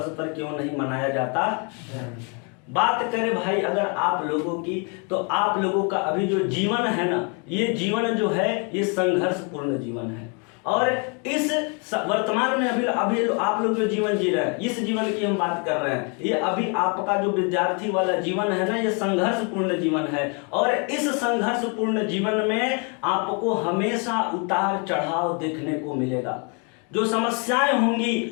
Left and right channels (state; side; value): quieter; right; 35.7 dB